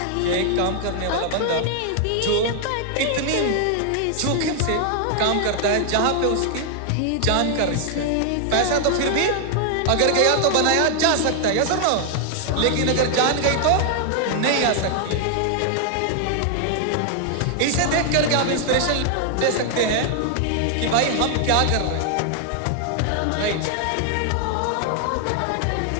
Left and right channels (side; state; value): both; different; correlation 0.00